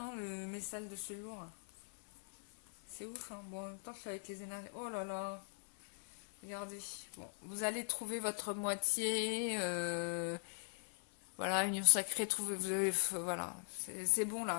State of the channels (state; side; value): silent; right; 51 dB below the other